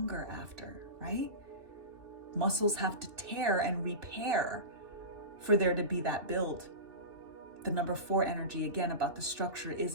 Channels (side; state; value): left; late; 2.7 ms